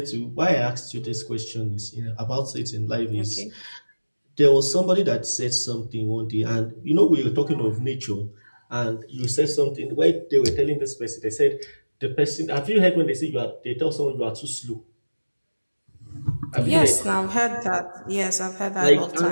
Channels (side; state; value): both; inverted; correlation -1.00